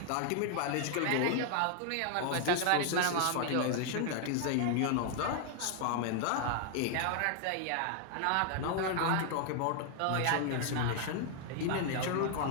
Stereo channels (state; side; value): different; both; correlation 0.00